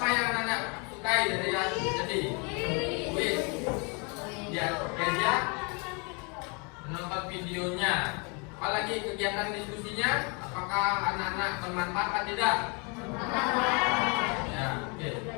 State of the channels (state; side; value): quieter; right; 33.0 dB